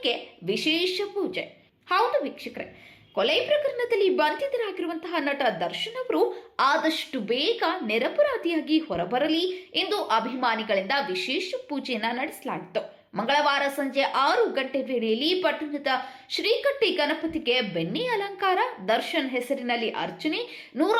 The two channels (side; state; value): both; identical; correlation 1.00